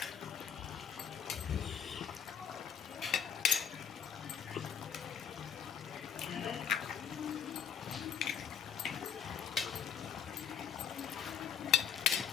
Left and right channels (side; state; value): right; quieter; 8.0 dB